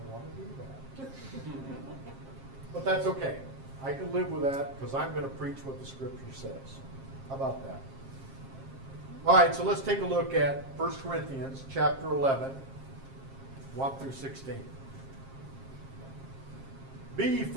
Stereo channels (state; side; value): late; left; 7.5 ms